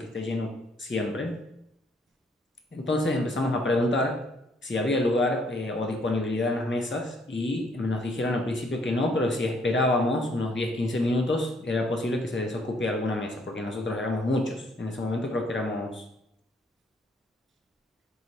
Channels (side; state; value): both; normal; correlation 0.66